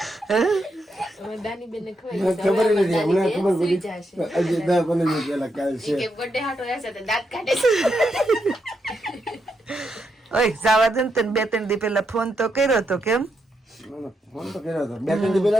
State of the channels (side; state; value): both; normal; correlation 0.81